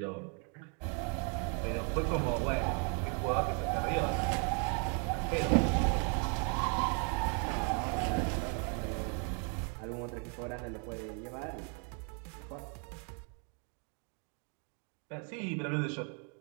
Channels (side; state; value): left; quieter; 39.3 dB